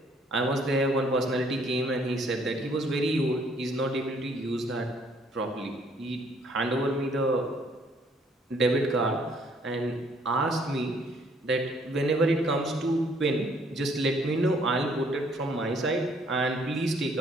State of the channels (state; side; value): normal; both; correlation 0.64